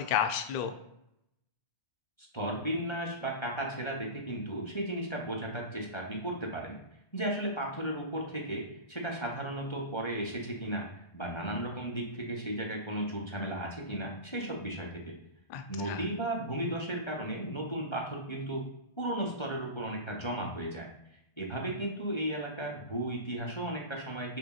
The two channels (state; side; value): late; right; 1.3 ms